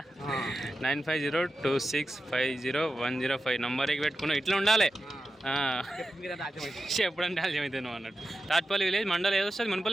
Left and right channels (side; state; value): both; normal; correlation 0.91